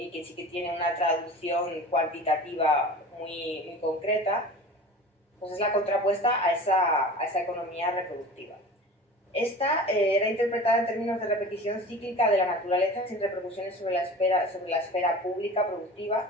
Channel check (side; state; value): both; normal; correlation 0.37